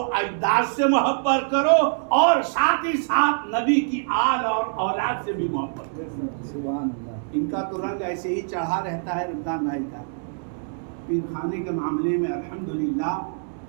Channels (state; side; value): silent; left; digital silence